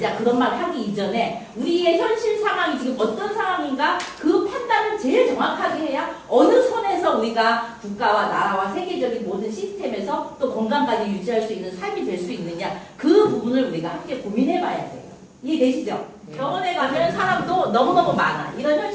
그런 말 하기 이전에 우리의 현실 상황이 지금 어떤 상황인가 그 판단을 제일 정확하게 해야 어느 선에서 우리가 국가와 나라와 세계적인 모든 시스템에서 또 건강까지 유지할 수 있는 삶이 될 수 있느냐 그 부분을 우리가 함께 고민해 봐야 돼요. 이해되시죠? 병원에 가면 사람도 너무너무 많아. 이런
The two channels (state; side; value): identical; both; correlation 1.00